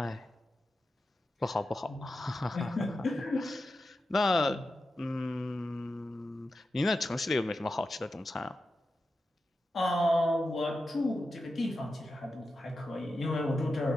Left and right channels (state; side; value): normal; both; correlation 0.91